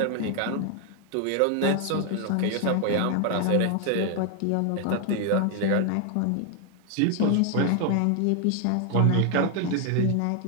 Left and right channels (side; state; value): both; different; correlation 0.00